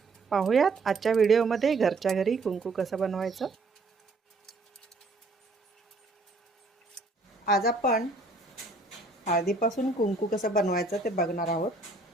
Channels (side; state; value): left; quieter; 3.3 dB